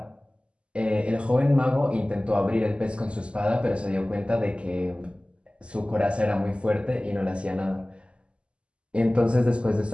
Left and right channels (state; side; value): late; left; 0.054 ms